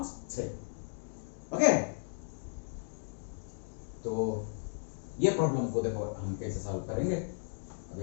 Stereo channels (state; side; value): silent; right; digital silence